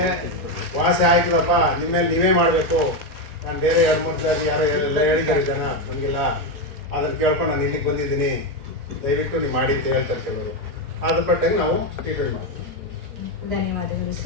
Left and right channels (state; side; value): late; left; 4.0 ms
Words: ವಾಸಿ ಆಯ್ತದಪ್ಪ, ನಿಮ್ಮ ಮೇಲೆ ನೀವೇ ಮಾಡಬೇಕು, ನಾನು ಬೇರೆ 2-3 ಸಾರಿ ಯಾರೋ ಎಲ್ಲ ಹೇಳಿದ್ದಾರೆ ಜನ, ನಮಗಿಲ್ಲ, ಅದನ್ನು ಕೇಳ್ಕೊಂಡು ನಾನು ಇಲ್ಲಿಗೆ ಬಂದಿದ್ದೀನಿ, ದಯವಿಟ್ಟು ನೀವು ಮಾಡಿ ಅಂತ ಹೇಳ್ತಾರೆ ಕೆಲವರು. ಅದ್ರ ಪಟ್ಟಾಗಿ ನಾವು ಟ್ರೀಟ್ಮೆಂಟ್ ಮಾಡ್ತೀವಿ. ಧನ್ಯವಾದಗಳು